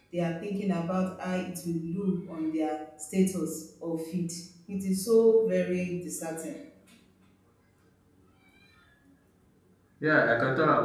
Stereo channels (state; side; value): identical; both; correlation 1.00